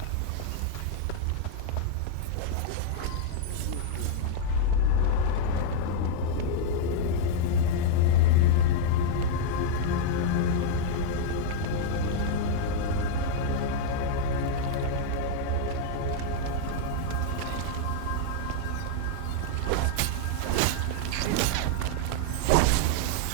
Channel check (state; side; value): different; both; correlation 0.00